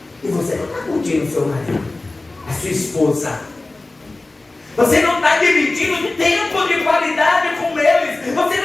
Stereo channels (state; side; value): quieter; right; 3.0 dB